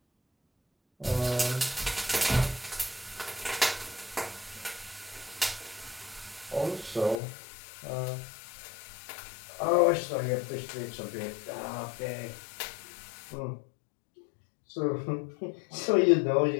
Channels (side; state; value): right; drops out; at 7.2 s